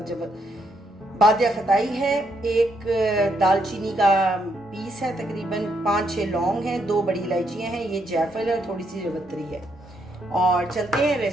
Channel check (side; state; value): both; normal; correlation 0.76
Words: बादिया खताई है, 1 दालचीनी का पीस है, तकरीबन 5-6 लौंग हैं, 2 बड़ी इलायचियाँ हैं, ये जायफल है और थोड़ी सी जवत्री है। और चलते हैं